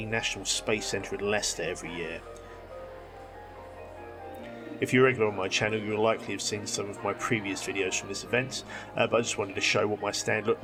National Space Centre in Leicester every year. If you're regular on my channel, you'll likely have seen some of my previous videos from this event, but I just wanted to show what my stand looked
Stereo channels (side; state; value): both; identical; correlation 1.00